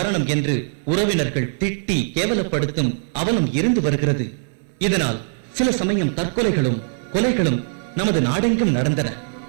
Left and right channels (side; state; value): left; silent; 61 dB below the other